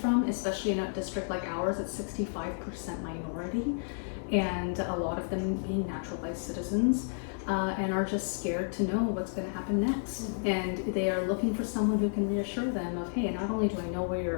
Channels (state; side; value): silent; right; 57 dB below the other